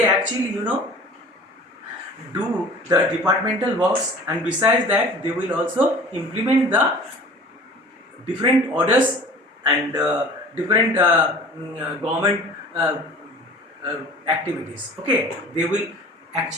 actually do the departmental works, and besides that they will also implement the different orders and different government activities. Okay, they will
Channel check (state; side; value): normal; both; correlation 0.43